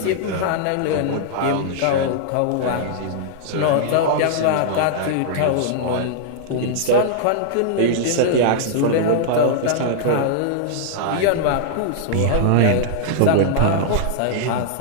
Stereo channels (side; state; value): both; different; correlation -0.01